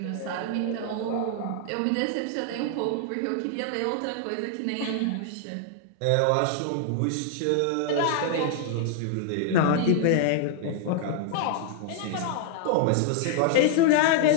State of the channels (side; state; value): both; different; correlation 0.00